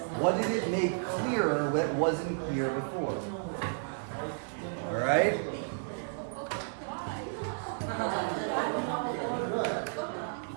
What did it make clearer that wasn't clear before? All right?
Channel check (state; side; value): silent; left; digital silence